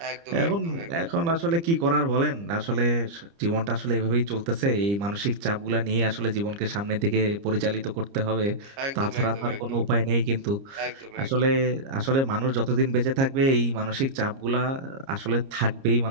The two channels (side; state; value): left; late; 30 ms